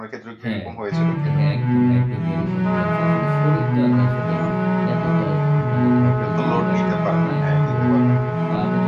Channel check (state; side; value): identical; both; correlation 1.00